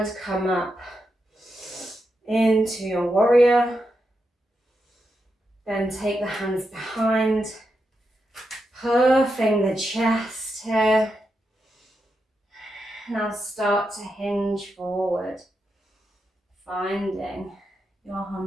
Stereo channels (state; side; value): normal; both; correlation 0.86